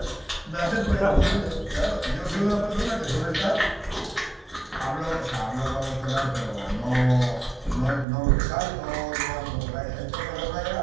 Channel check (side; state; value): left; drops out; at 8.1 s